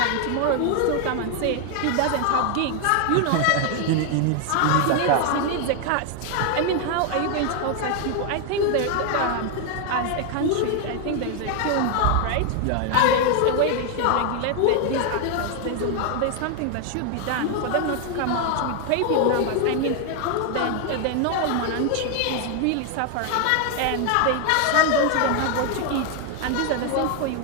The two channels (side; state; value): both; different; correlation 0.01